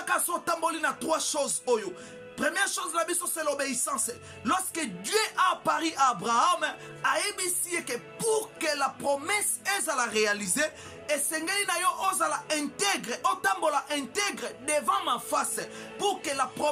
so tamboli na 3 choses oyo. Première chose la biso c'est l'obéissance. Lorsque Dieu a apparu à Abraham, a ébissi que pour que la promesse est à la réaliser, et sengeli na yo ozala intègre, otambola intègre devant ma face, pour que la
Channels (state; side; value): identical; both; correlation 1.00